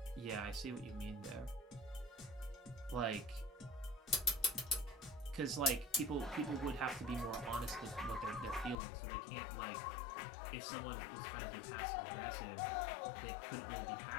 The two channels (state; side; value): drops out; right; at 8.8 s